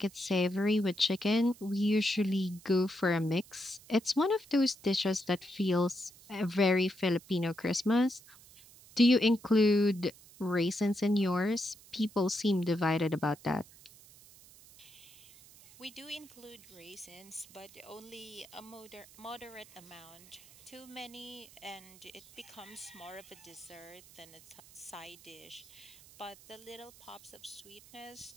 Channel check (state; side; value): noise; right; hiss, 22 dB below the sound